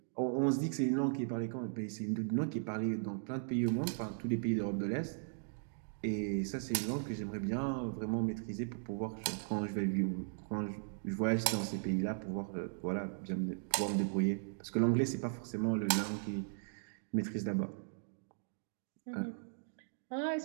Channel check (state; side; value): silent; left; digital silence